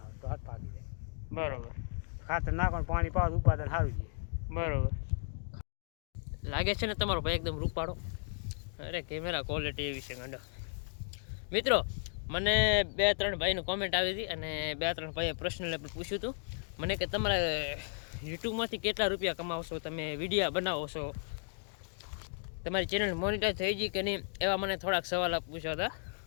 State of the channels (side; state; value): right; silent; digital silence